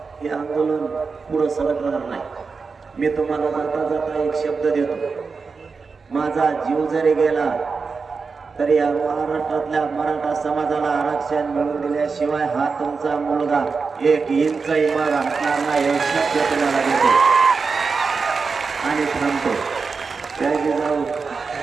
हे आंदोलन पुढं सरकणार नाही. मी तुम्हाला जाता जाता एक शब्द देतो, माझा जीव जरी गेला तरी या महाराष्ट्रातल्या मराठा समाजाला आरक्षण मिळवून दिल्याशिवाय हा तुमचा मुलगा 1 इंचही माग हटणार नाही, हे शब्द तुम्हाला देतो आणि थांबतो. जय जिजाऊ,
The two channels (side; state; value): left; quieter; 4.8 dB